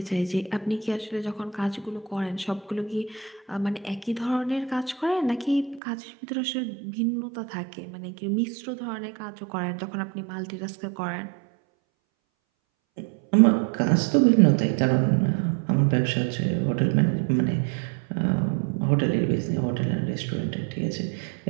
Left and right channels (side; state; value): left; drops out; at 5.8 s